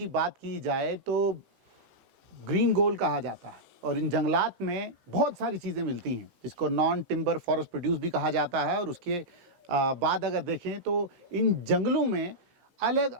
बात की जाए तो ग्रीन गोल्ड कहा जाता है और इन जंगलात में बहुत सारी चीज़ें मिलती हैं जिसको नॉन टिम्बर फॉरेस्ट प्रोड्यूस भी कहा जाता है। और उसके बाद अगर देखें तो इन जंगलों में अलग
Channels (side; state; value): left; late; 15 ms